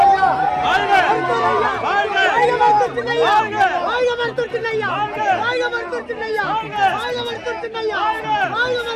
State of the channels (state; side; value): identical; both; correlation 1.00